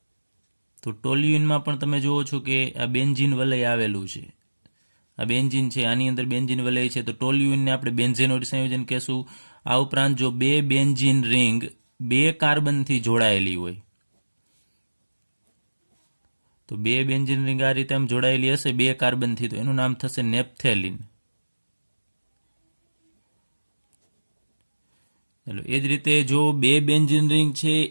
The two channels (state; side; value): inverted; both; correlation -1.00